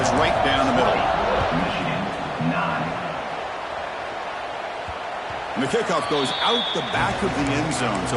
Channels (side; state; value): both; identical; correlation 1.00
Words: is right down the middle. And the kickoff goes out the back of the end zone, so